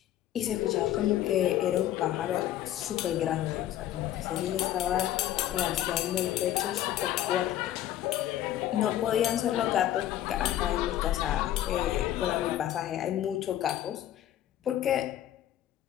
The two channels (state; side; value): quieter; right; 12.5 dB